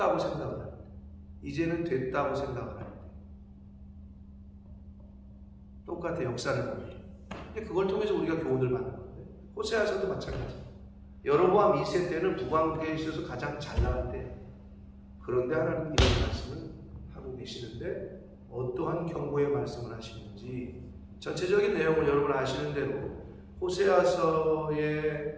생각을 할 때, 이제는 됐다고 생각을 할 때, 똑같아. 역사를 보면. 근데 그걸 통해서 우리가 교훈을 받는 건데, 호세아서도 마찬가지. 여로보암 2세 때는 북왕국에 있어서 가장 잘 나갈 때, 그런데 하나님은 이런 말씀을 하고 계시는데 어떠한 경고의 말씀을 하시는지 전체적인 내용을 여러분 아시는 대로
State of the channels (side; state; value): both; identical; correlation 1.00